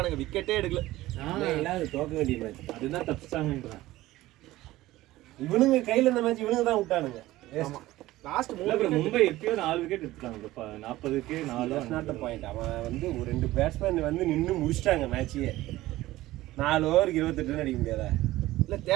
விக்கெட்டே எடுக்கல. இல்லாத தோக்க வேண்டிய மேட்ச் அதுதான் தப்பிச்சிட்டாங்கன்றேன். இவனுங்க கையில் இந்த மேட்ச் இவனுங்க தான் விட்டானுங்க. லாஸ்ட் இல்ல bro, மும்பை எப்பயோ 4 விக்கெட் எடுத்துட்டாங்க. 40க்கு 4 நாட் பாயிண்ட். அவன் வந்து ஒரு 2 பேட்ஸ்மேன் வந்து நின்று முடிச்சிட்டாங்க மேட்சையே. 4 ஓவருக்கு 28 ரன் அடிக்க முடியாதா? இல்ல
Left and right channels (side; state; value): left; quieter; 16.9 dB